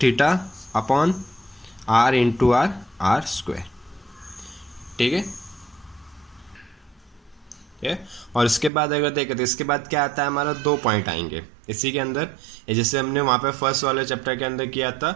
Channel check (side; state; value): left; drops out; at 8.7 s